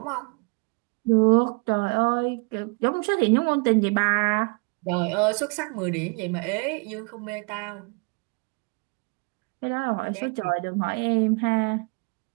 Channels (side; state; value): left; quieter; 31.5 dB